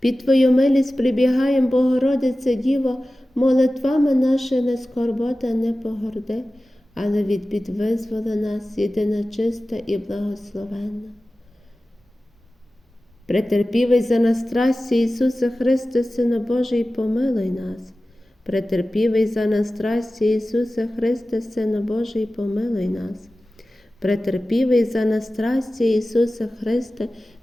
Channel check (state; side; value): normal; both; correlation 0.96